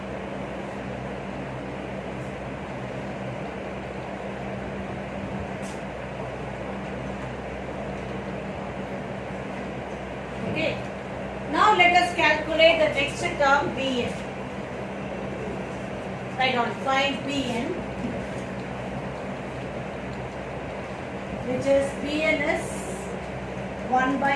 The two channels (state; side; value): identical; both; correlation 1.00